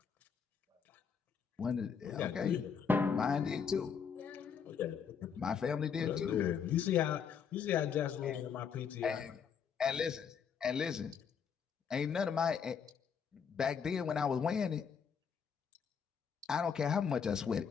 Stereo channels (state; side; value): quieter; right; 6.8 dB